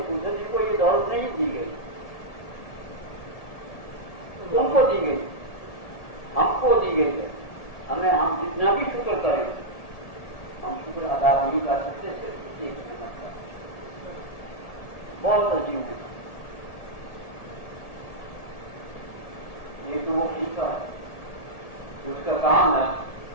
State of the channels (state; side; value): late; right; 1.7 ms